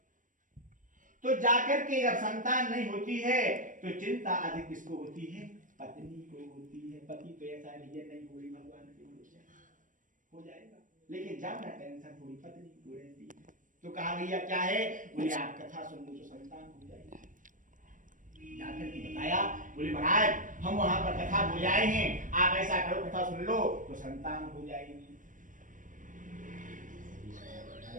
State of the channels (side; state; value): left; late; 0.38 ms